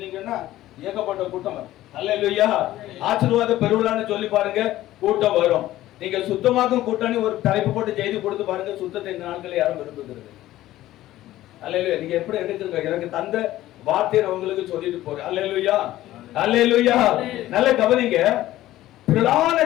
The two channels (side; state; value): right; quieter; 14.9 dB